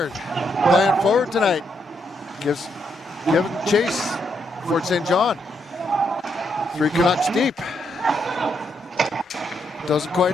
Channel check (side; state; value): both; normal; correlation 0.78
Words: playing forward tonight. Giving chase. Fort St. John. 3 Canucks deep. Doesn't quite